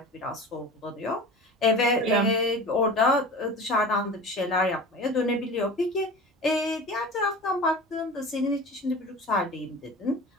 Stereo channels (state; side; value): normal; both; correlation 0.35